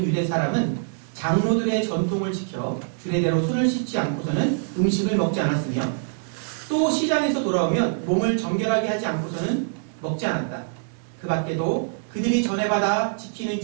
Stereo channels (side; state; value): left; silent; digital silence